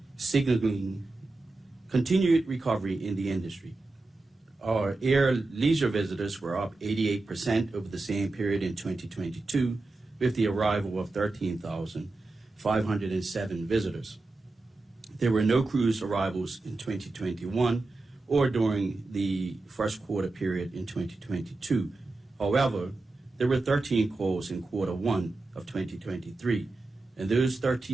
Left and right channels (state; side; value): quieter; left; 3.2 dB